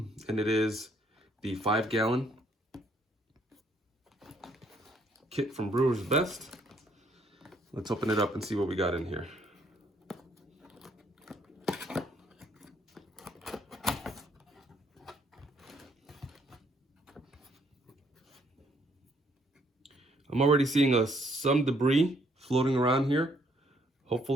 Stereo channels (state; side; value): normal; both; correlation 0.68